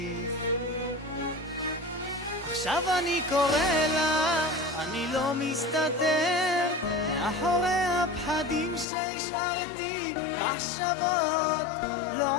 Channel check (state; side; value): drops out; right; at 8.8 s